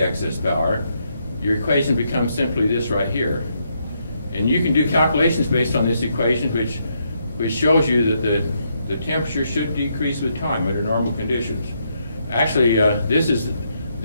excess power, your equation becomes simply this right here. And you can do calculations based on this equation, which shows you that the temperature should decrease with time under normal conditions. Actually, this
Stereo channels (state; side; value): inverted; both; correlation -0.77